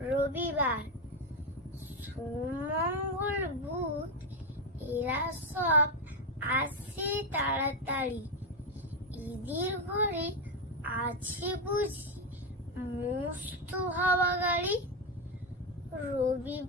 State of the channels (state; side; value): normal; both; correlation 0.07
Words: রবিবার। সুমঙ্গল বুধ এরা সব আসে তাড়াতাড়ি, ঈদের ঘরে আছে বুঝি মস্ত হাওয়া গাড়ি।